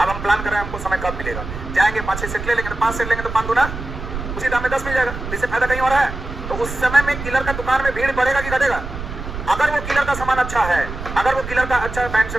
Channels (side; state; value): right; noise; rumble, 8 dB below the sound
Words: हम प्लान कर रहे हैं, हमको समय कब मिलेगा, जाएंगे 5-6 सेट ले लेंगे, तो 5 सेट लेंगे तो 5 दूना उसी दाम में 10 मिल जाएगा। इससे फायदा कहीं हो रहा है। तो उस समय में किलर का दुकान में भीड़ बढ़ेगा कि घटेगा? अगर वो किलर का सामान अच्छा है, अगर वो किलर का अच्छा पैंट